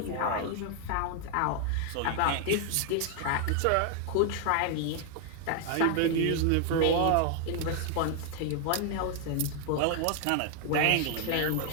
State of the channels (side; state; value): both; different; correlation 0.00